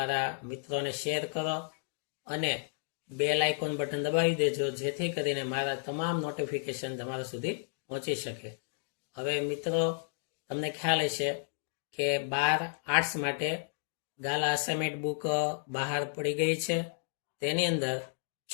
મિત્રોને શેર કરો અને બેલ આઇકોન બટન દબાવી દેજો, જેથી કરીને મારા તમામ નોટિફિકેશન તમારા સુધી પહોંચી શકે. હવે મિત્રો, તમને ખ્યાલ હશે કે 12 આર્ટ્સ માટે ગાલા અસાઇનમેન્ટ બુક બહાર પડી ગઈ છે. તેની અંદર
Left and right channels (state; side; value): silent; right; digital silence